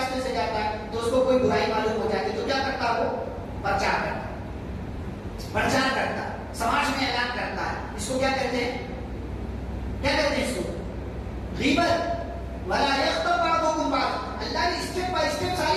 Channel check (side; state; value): both; identical; correlation 1.00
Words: سے جاتا ہے، تو اس کو کوئی برائی معلوم ہو جاتی ہے تو کیا کرتا ہے؟ وہ پرچار کرتا ہے، پرچار کرتا ہے، سماج میں اعلان کرتا ہے. اس کو کیا کہتے ہیں؟ کیا کہتے ہیں اس کو؟ غیبت. ولا یغتب بعضکم بعضا. اللہ نے اسٹیپ بائی اسٹیپ ساری